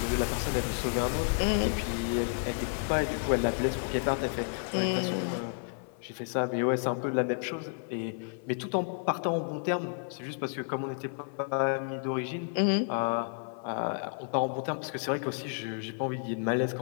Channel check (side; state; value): right; silent; 57 dB below the other